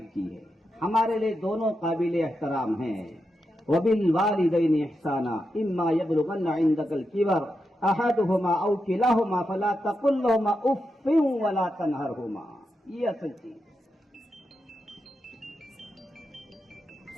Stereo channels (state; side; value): normal; both; correlation 0.87